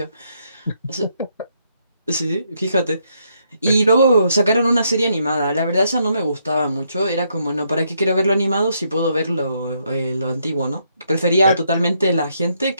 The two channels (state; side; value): inverted; both; correlation -0.75